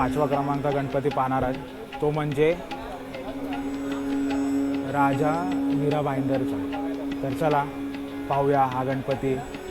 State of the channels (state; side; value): identical; both; correlation 1.00